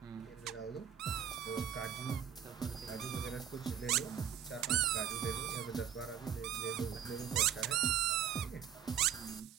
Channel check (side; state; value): left; quieter; 9.1 dB